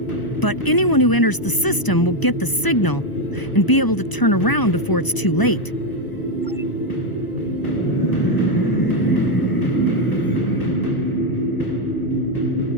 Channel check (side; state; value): right; late; 1.0 ms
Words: anyone who enters the system will get the signal and be able to turn around before it's too late.